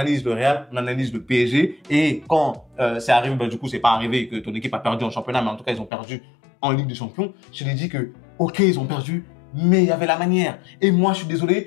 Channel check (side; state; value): right; drops out; at 5.9 s